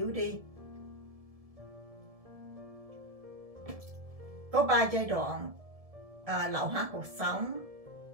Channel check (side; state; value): left; late; 1.7 ms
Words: đi. Có 3 giai đoạn lão hóa cột sống